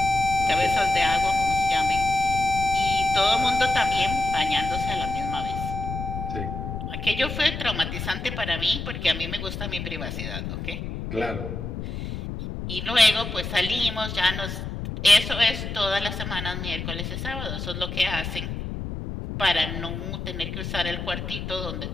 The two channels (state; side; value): noise; left; rumble, 6 dB below the sound